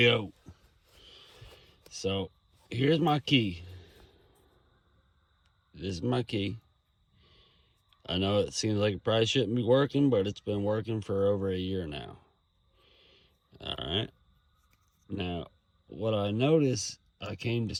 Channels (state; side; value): identical; both; correlation 1.00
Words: So here's my key. This is my key. I know it seems like it probably shouldn't be working, but it's been working for over a year now. Alright. Now, what I noticed, I came to